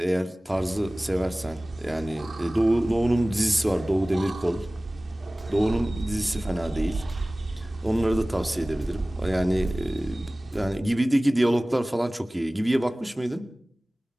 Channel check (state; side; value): normal; both; correlation 0.98